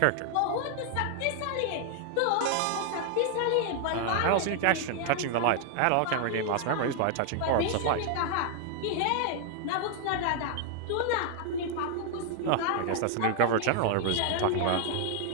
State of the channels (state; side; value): different; both; correlation 0.00